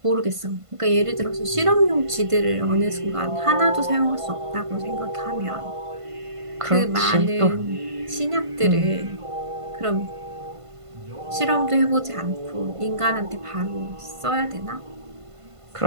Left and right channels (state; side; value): late; left; 1.5 ms